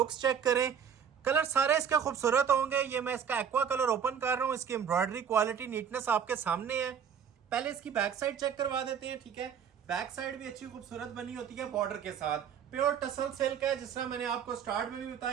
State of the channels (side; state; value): left; quieter; 7.8 dB